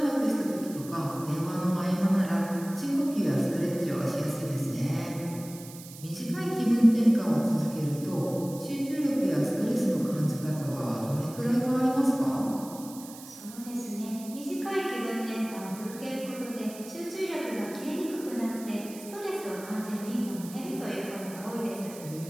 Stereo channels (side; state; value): right; noise; hiss, 16 dB below the sound